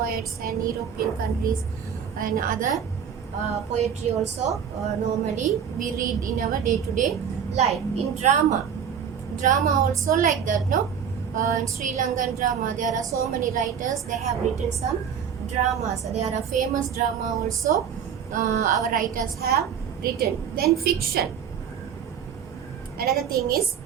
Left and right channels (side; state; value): left; quieter; 7.8 dB